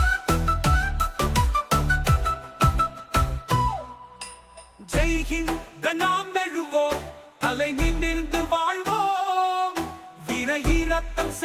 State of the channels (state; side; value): identical; both; correlation 1.00